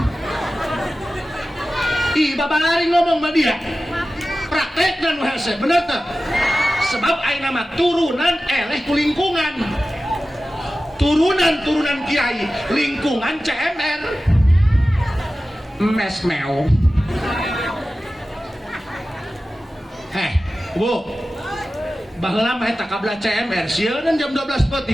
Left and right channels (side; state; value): both; normal; correlation 0.95